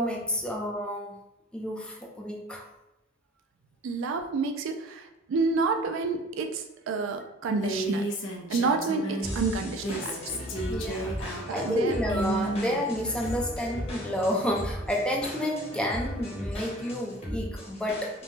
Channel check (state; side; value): normal; both; correlation 0.47